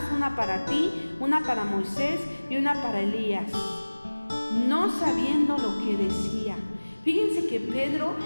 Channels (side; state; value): both; inverted; correlation -1.00